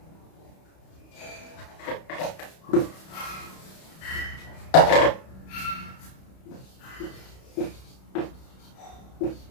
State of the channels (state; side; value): late; right; 31 ms